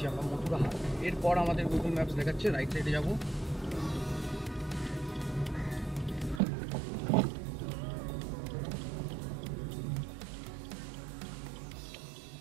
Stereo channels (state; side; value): drops out; left; at 6.4 s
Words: আমরা, মথুরাহাট। এরপর আমাদের গুগল ম্যাপস দেখাচ্ছে রাইট সাইডে যাবো।